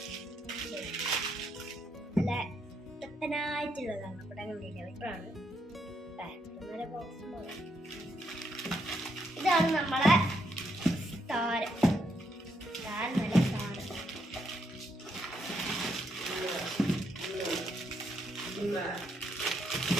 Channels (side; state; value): both; normal; correlation 0.77